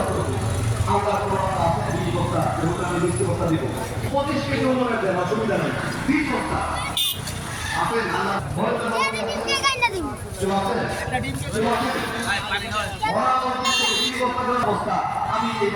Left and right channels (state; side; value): identical; both; correlation 1.00